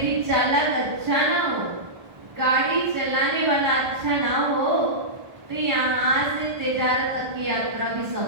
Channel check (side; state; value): left; late; 1.4 ms